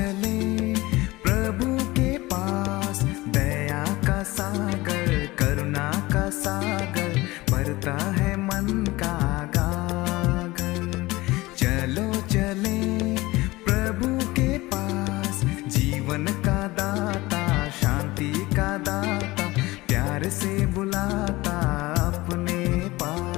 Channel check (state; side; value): quieter; right; 20.2 dB